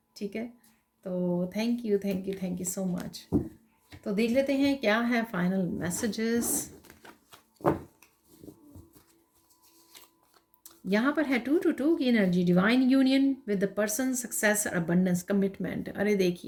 ठीक है, तो थैंक यू सो मच। तो देख लेते हैं क्या है फाइनल मैसेजेस। यहाँ पर है 2 की energy, divine union with the person, success और अबंडेंस, कमिटमेंट। अरे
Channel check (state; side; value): identical; both; correlation 1.00